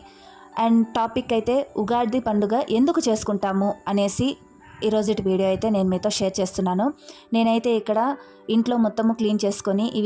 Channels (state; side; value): identical; both; correlation 1.00